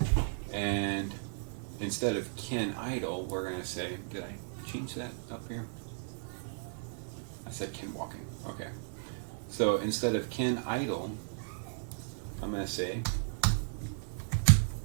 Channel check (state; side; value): silent; left; 55 dB below the other